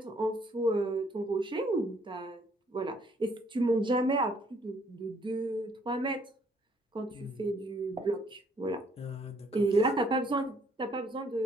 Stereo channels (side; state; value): both; normal; correlation 0.65